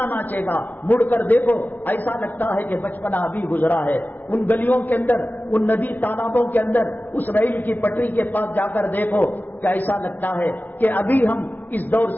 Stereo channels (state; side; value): late; right; 0.081 ms